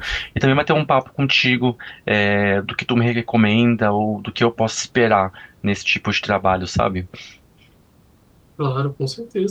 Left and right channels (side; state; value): both; identical; correlation 1.00